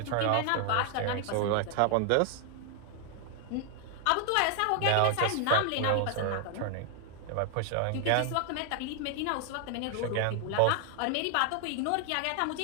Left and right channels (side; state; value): both; different; correlation 0.00